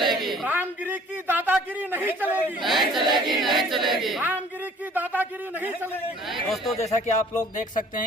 रामगिरी की दादागिरी नहीं चलेगी, रामगिरी की दादागिरी नहीं चलेगी। दोस्तों, जैसा कि आप लोग देख सकते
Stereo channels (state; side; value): normal; both; correlation 0.53